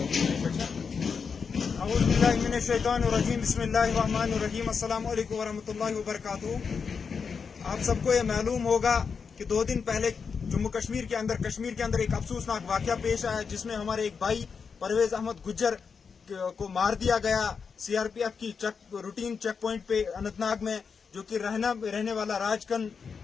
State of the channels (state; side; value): quieter; right; 5.8 dB